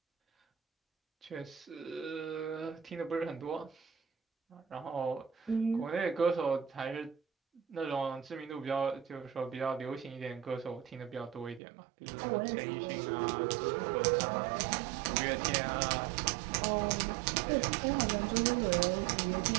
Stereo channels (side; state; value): left; drops out; at 11.6 s